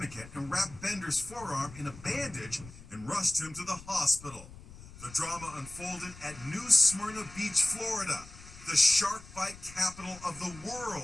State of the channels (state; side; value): noise; left; rumble, 17 dB below the sound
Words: and wrapped Bender's forearm in a bandage and rushed him to the hospital. The drama unfolded at New Smyrna Beach, Florida, the shark bite capital of the